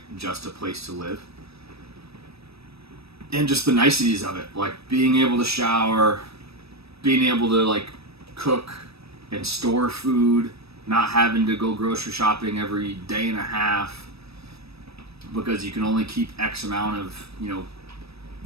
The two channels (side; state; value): left; late; 0.78 ms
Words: just a place to live. And just the niceties of it, like being able to shower, being able to like cook and store food, not having to go grocery shopping every day and a half because you can only keep X amount of,